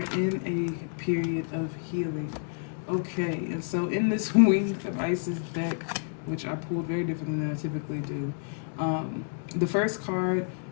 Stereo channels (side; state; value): right; silent; 58 dB below the other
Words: in a period of healing. Okay, and so in this Wings of Isis deck, which I pulled very differently than I typically do, the first card